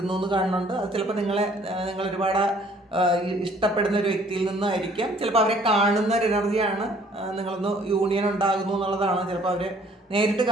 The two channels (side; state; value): both; normal; correlation 0.58